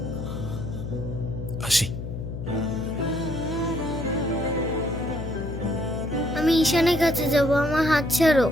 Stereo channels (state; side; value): noise; left; hum, 7 dB below the sound